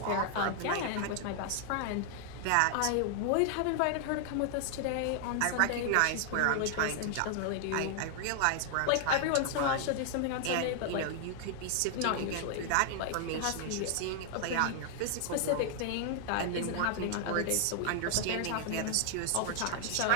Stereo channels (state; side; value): different; both; correlation 0.00